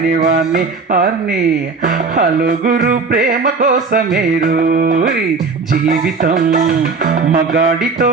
వాణ్ణి అన్ని. హలుగురు ప్రేమ కోసమే రోయ్ జీవితం, మగాడితో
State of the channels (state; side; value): quieter; left; 4.5 dB